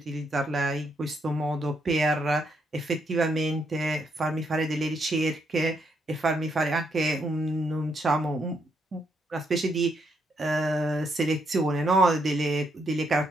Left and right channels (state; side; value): normal; both; correlation 0.76